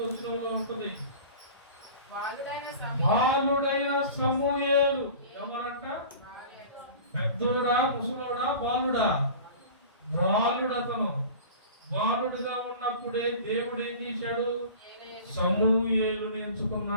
వచనంలో ఉంటుంది, బాలుడైన సమూయేలు. ఎవరంట? పెద్దోడా, ముసలోడా, బాలుడా? బాలుడతను. బాలుడుగా ఉన్నప్పుడే దేవుడు ఏం చేశాడు? సమూయేలుని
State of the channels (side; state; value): both; inverted; correlation -0.39